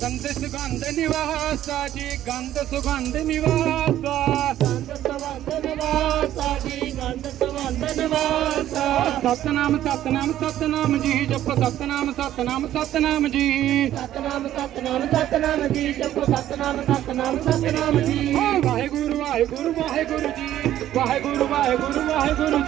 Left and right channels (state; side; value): quieter; left; 12.5 dB